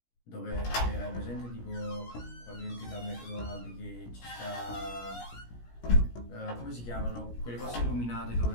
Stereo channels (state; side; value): late; right; 17 ms